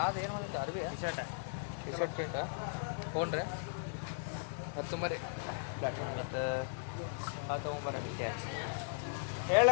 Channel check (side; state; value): right; silent; digital silence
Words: ಏನು ಬಂದಿತ್ತು ಅರ್ಬಿ ಟಿ ಶರ್ಟ್ ಪ್ರಿಂಟಾ ಫೋನ್ ರೀ ಹತ್ತು ಮರಿ ಮತ್ತು ಹಾಂ ತೊಗೊಂಬರ್ರಿ